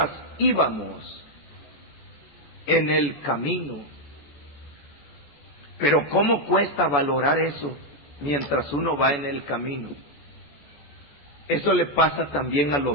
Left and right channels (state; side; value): late; right; 14 ms